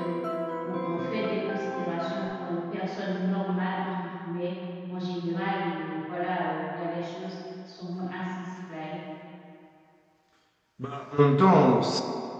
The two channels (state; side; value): identical; both; correlation 1.00